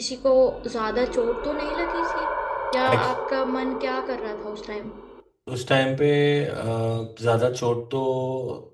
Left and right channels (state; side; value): identical; both; correlation 1.00